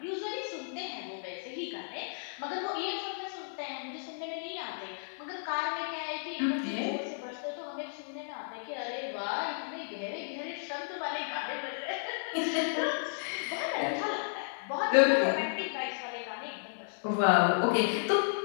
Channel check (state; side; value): silent; right; 56 dB below the other